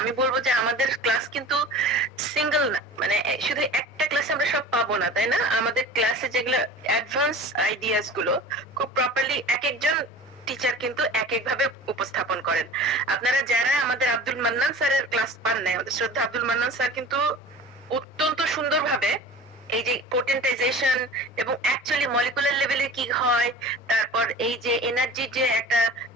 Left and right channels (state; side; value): normal; both; correlation 0.39